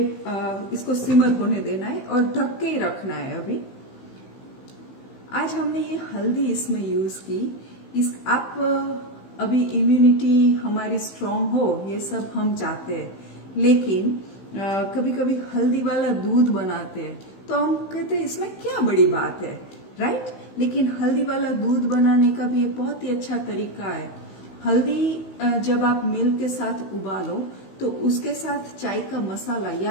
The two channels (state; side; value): late; right; 15 ms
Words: इसको सिमर होने देना है और ढक के ही रखना है। अभी आज हमने ये हल्दी इसमें यूज की। आप अभी इम्यूनिटी हमारी स्ट्रांग हो, ये सब हम चाहते हैं, लेकिन कभी कभी हल्दी वाला दूध बनाते हैं तो हम कहते हैं इसमें क्या बड़ी बात है, राइट? लेकिन हल्दी वाला दूध बनाने का भी एक बहुत ही अच्छा तरीका है। हल्दी जब आप मिल्क के साथ उबालो तो उसके साथ चाय का मसाला